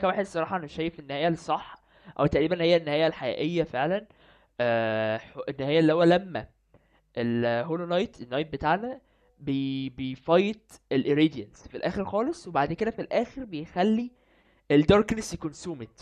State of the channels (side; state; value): both; identical; correlation 1.00